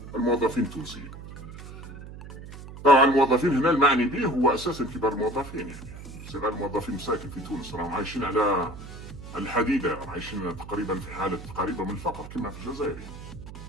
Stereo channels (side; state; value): right; noise; hum, 13 dB below the sound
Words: الموظفين التونسيين. طبعا الموظفين هنا المعني به هو أساسا كبار الموظفين، يعني صغار الموظفين مساكن في تونس راهم عايشين على الحديدة، راهم عايشين تقريبا في حالة قريبة من الفقر كما في الجزائر.